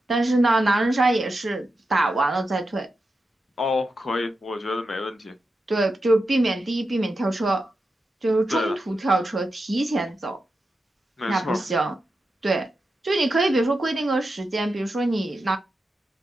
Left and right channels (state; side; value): normal; both; correlation 0.89